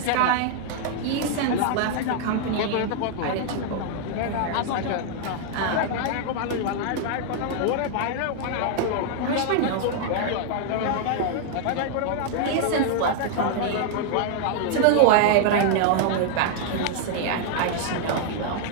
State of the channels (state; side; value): different; both; correlation 0.00